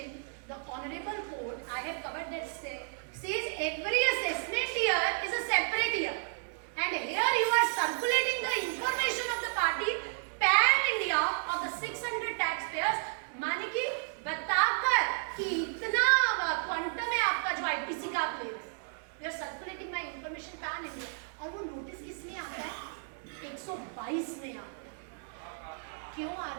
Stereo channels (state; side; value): silent; left; digital silence